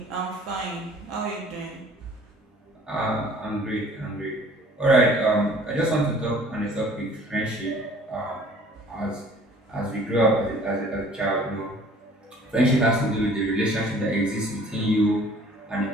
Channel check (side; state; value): both; normal; correlation 0.52